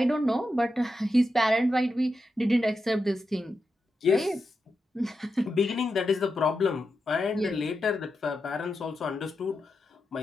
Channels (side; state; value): both; normal; correlation 0.88